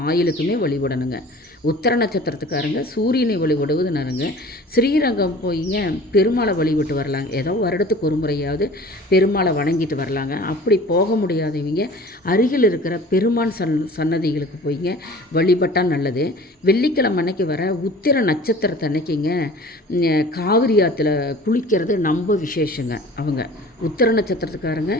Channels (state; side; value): normal; both; correlation 0.44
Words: ஆயுளுக்குமே வழிபடணுங்க. உத்தர நட்சத்திரத்துக்காரங்க சூரியனை வழிபடுவது நருங்க. ஸ்ரீரங்கம் போய்ங்க பெருமாளை வழிபட்டு வரலாங்க. ஏதோ வருடத்துக்கு ஒரு முறையாவது பெருமாளை வணங்கிட்டு வரலாங்க. அப்படி போக முடியாதவங்க அருகில் இருக்கிற பெருமான் சன்னதிகளுக்கு போய்ங்க வழிபட்டால் நல்லது. வெள்ளிக்கிழமை அன்னைக்கு வர உத்திர நட்சத்திரத்தை அன்னைக்குங்க காவிரி ஆற்றுல குளிக்கிறது ரொம்ப விசேஷங்க. அவங்க உத்திர நட்சத்திரத்துக்காரங்க